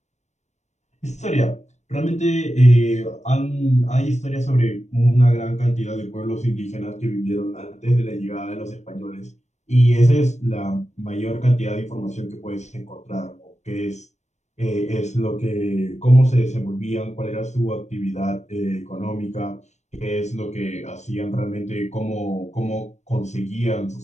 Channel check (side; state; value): right; late; 0.33 ms